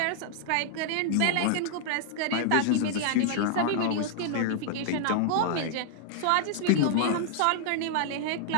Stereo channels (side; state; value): both; different; correlation -0.01